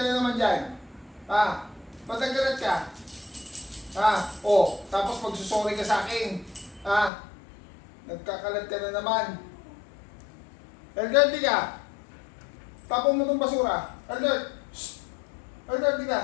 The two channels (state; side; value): drops out; right; at 7.1 s